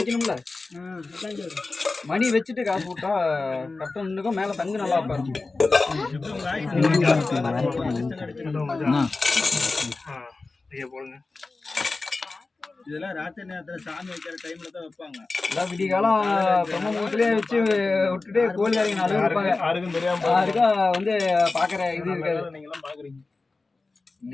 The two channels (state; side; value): quieter; right; 3.7 dB